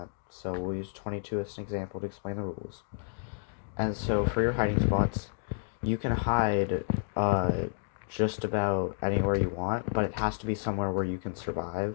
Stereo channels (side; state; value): right; silent; digital silence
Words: So we'll use 22 as an example to explain the rules. And so for your hiding spots, you can hide just about anywhere you want, but it has to be somewhere where you can